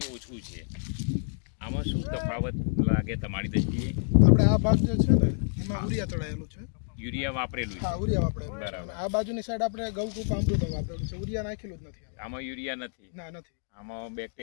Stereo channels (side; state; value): right; silent; digital silence